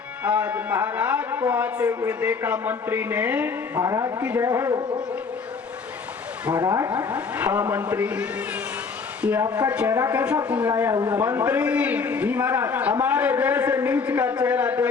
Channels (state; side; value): quieter; right; 5.1 dB